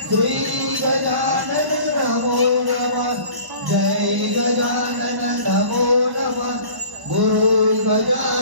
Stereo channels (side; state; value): left; late; 1.0 ms